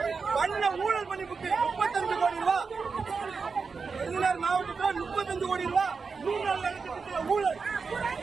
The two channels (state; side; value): quieter; left; 5.0 dB